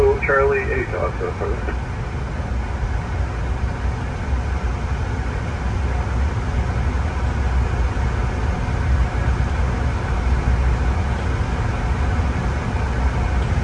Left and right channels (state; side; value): identical; both; correlation 1.00